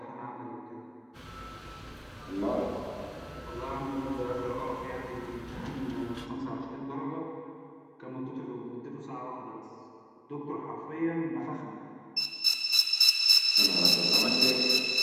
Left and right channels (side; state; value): both; identical; correlation 1.00